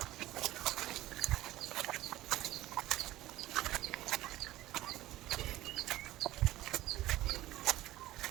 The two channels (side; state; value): left; quieter; 15.9 dB